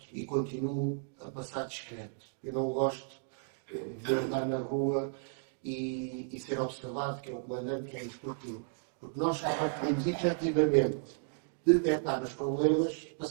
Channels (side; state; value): left; silent; digital silence